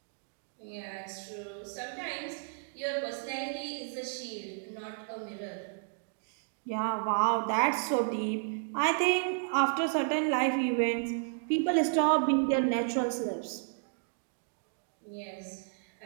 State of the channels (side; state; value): left; silent; digital silence